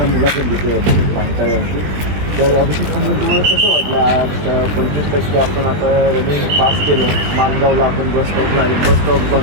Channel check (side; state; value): left; late; 20 ms